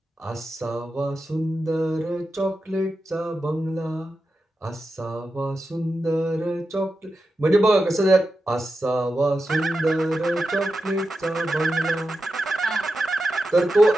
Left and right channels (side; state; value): both; normal; correlation 0.90